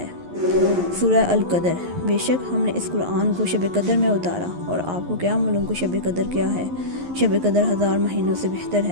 سورہ القدر، بے شک ہم نے اس قرآن کو شب قدر میں اتارا، اور آپ کو کیا معلوم کہ شب قدر کیا ہے؟ شب قدر 1000 مہینوں سے بہتر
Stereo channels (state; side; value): late; left; 11 ms